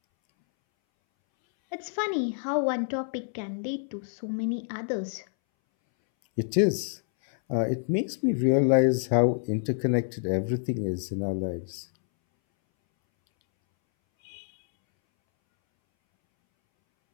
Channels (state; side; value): silent; right; 60 dB below the other